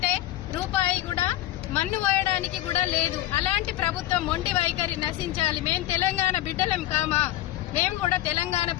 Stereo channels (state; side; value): quieter; right; 14.7 dB